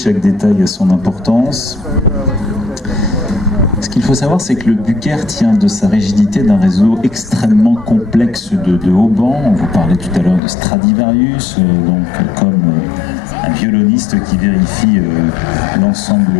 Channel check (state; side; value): drops out; right; at 10.4 s